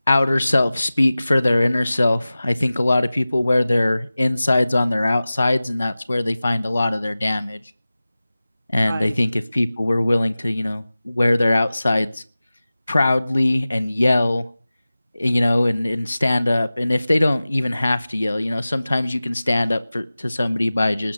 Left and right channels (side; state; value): both; inverted; correlation -0.97